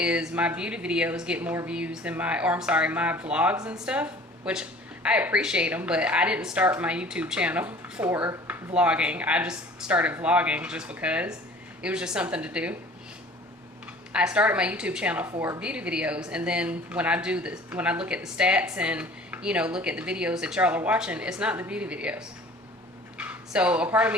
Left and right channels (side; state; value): both; normal; correlation 0.47